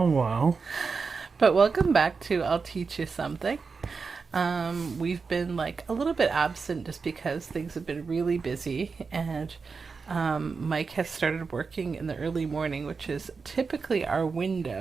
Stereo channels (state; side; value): quieter; left; 4.9 dB